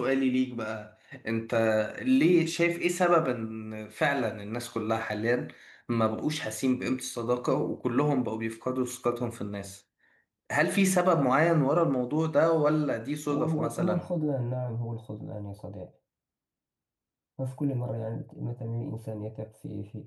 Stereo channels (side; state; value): both; identical; correlation 1.00